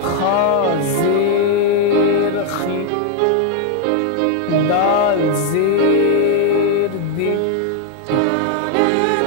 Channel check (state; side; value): different; both; correlation 0.00